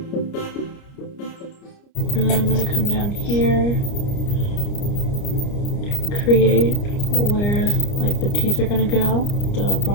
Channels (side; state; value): right; late; 29 ms